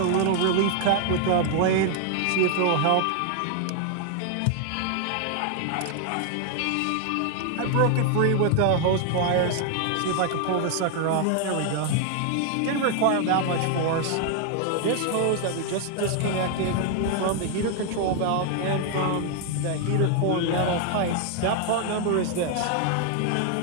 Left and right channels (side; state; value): both; different; correlation 0.00